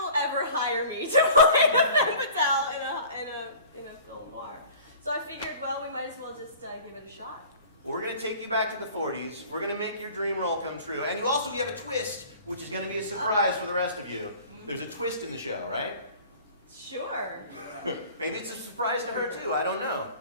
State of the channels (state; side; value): inverted; both; correlation -0.45